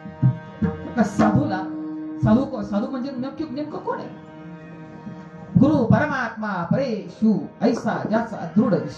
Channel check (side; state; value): both; identical; correlation 1.00